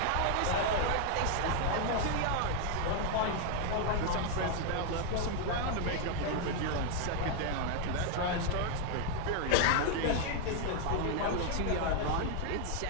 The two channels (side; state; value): both; different; correlation 0.00